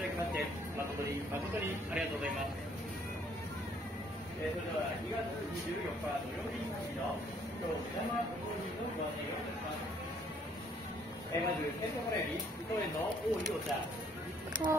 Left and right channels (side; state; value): both; normal; correlation 0.63